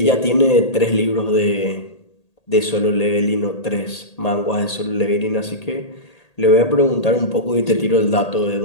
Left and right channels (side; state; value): right; late; 1.8 ms